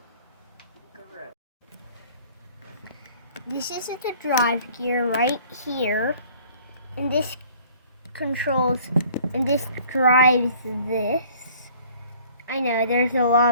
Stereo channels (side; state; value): both; inverted; correlation -0.53